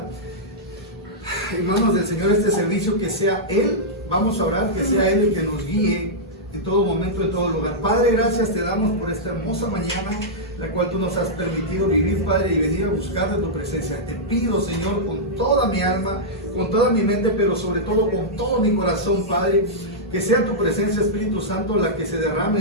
en manos del Señor este servicio, que sea Él, vamos a orar, que sea Él el que nos guíe en todo momento, en todo lugar. Padre, gracias te damos por esta hermosa mañana, la cual tú nos has permitido vivir, Padre, y venir a buscar de tu presencia. Te pido, Señor, con toda mi alma, con toda mi mente, pero sobre todo con todo mi corazón, Padre, que sea tu presencia, Espíritu Santo, la que se derrame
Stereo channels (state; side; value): normal; both; correlation -0.09